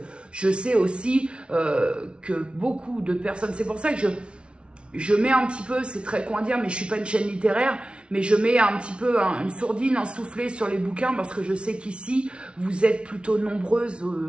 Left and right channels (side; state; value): left; late; 0.058 ms